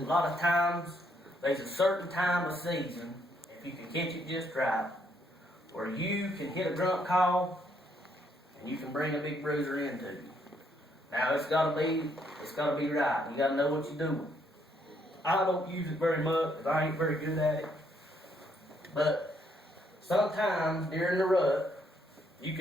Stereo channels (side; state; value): both; normal; correlation 0.72